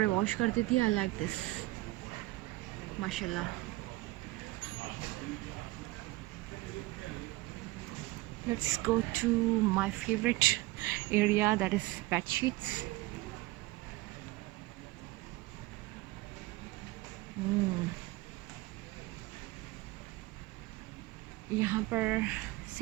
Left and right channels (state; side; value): quieter; left; 20.0 dB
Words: वॉश कर देती है. आई लाइक दिस माशाल्लाह. Let's go to my favourite area that is bed sheets. यहाँ पर